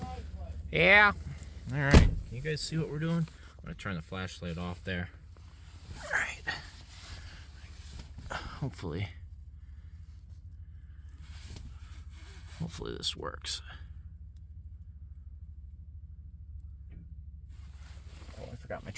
Yeah. All right. Can you guys see what we're doing? I'm gonna turn the flashlight off there. All right. Hopefully this works. Oh, I forgot my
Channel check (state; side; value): identical; both; correlation 1.00